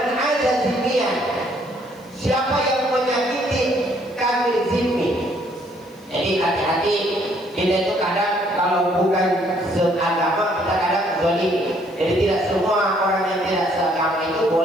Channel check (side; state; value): left; noise; hiss, 30 dB below the sound